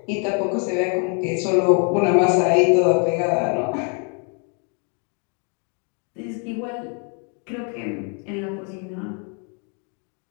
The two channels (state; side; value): quieter; right; 39.3 dB